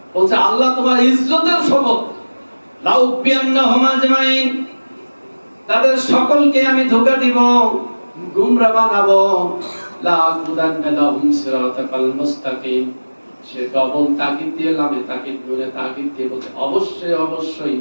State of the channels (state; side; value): inverted; both; correlation -1.00